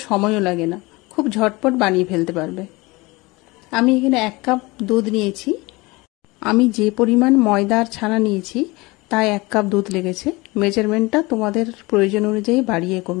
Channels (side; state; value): right; quieter; 23.2 dB